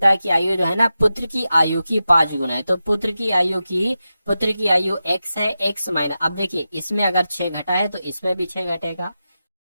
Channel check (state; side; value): inverted; both; correlation -0.91